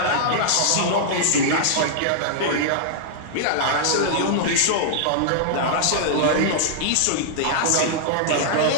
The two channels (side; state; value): both; different; correlation -0.01